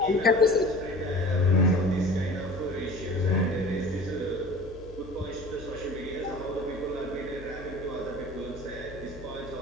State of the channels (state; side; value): normal; both; correlation 0.42